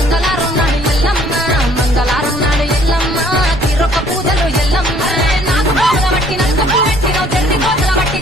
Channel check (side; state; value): right; noise; rumble, 12 dB below the sound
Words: నాడు ఎల్లమ్మ మంగళారం నాడు ఎల్లమ్మ తీరొక్క పూజలు ఎల్లమ్మ నాకు బాగా బట్టి నలుగు పెట్టినవు జల్ది కోతల బట్టి